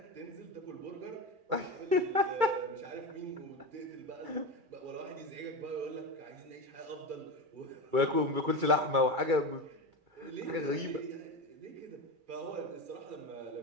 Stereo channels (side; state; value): left; late; 2.3 ms